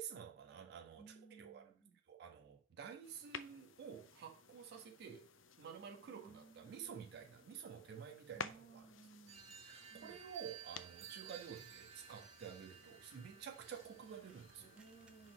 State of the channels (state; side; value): quieter; left; 3.9 dB